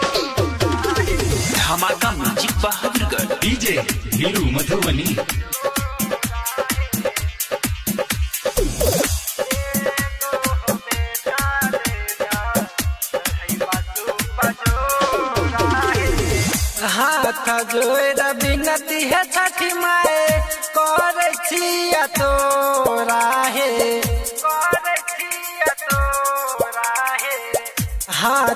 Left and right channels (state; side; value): identical; both; correlation 1.00